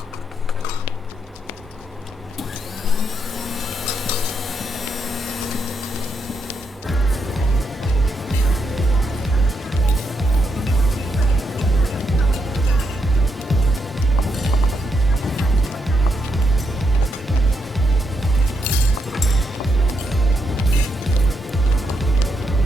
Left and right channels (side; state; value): both; normal; correlation 0.80